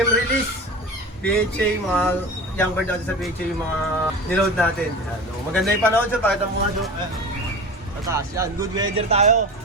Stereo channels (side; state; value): both; normal; correlation 0.32